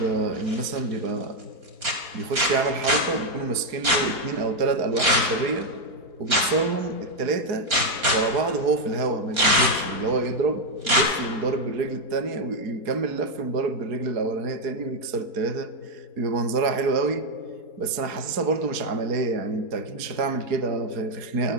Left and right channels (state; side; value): late; left; 4.2 ms